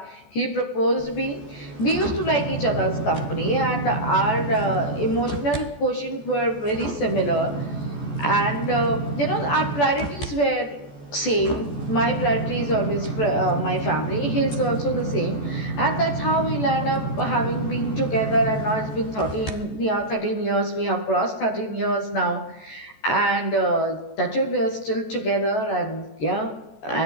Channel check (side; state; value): right; late; 14 ms